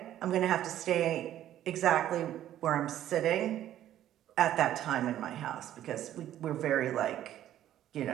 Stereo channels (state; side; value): quieter; left; 12.1 dB